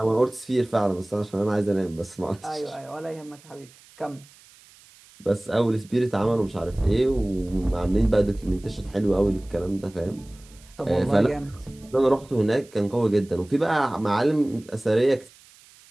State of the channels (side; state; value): right; noise; hiss, 25 dB below the sound